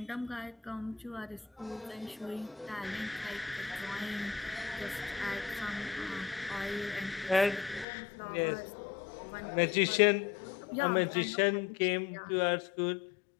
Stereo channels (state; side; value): drops out; right; at 7.9 s